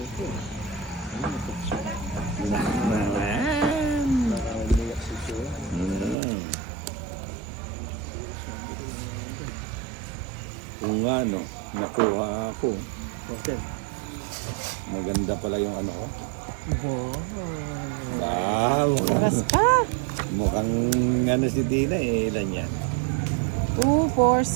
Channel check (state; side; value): drops out; left; at 6.2 s